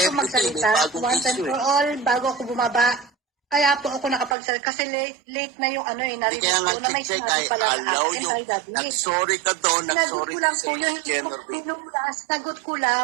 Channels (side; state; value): left; drops out; at 4.4 s